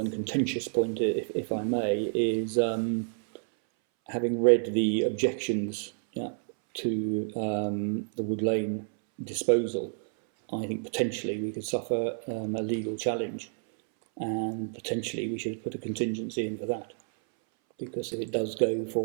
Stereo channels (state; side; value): silent; left; 58 dB below the other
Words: contentious point, if I may, is having read the objections to the Wood Lane disposal, I think potentially we could suffer a legal challenge, and potentially we should put a contingency in for that, because if it does go